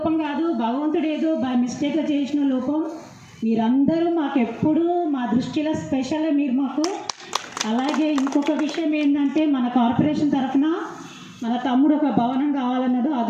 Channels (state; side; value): identical; both; correlation 1.00